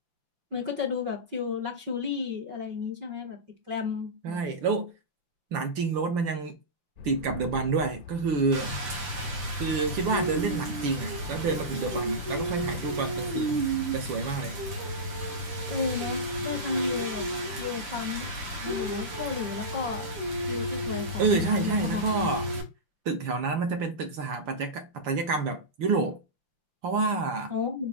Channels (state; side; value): late; left; 5.8 ms